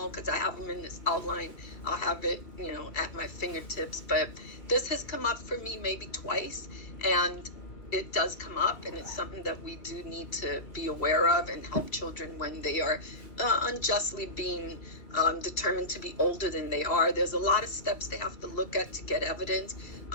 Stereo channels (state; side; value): late; right; 2.4 ms